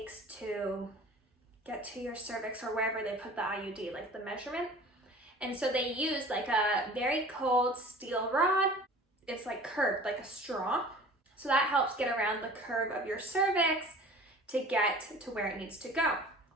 to get to your cervix or wherever they put the IUD, like the measurement. And so they use like a very cold steel rod. It's like curved, like a straw. So that helps get around the curve of your cervix to get to where it needs to go,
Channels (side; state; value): both; normal; correlation 0.44